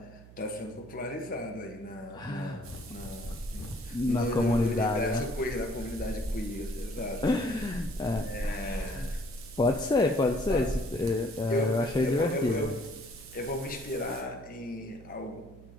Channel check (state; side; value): noise; right; hum, 19 dB below the sound